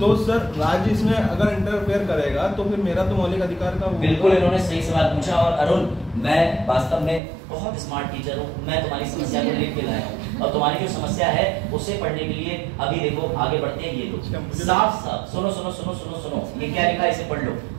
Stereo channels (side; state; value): left; drops out; at 7.2 s